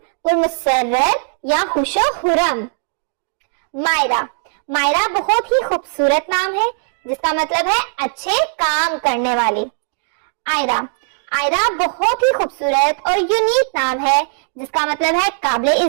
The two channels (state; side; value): silent; left; digital silence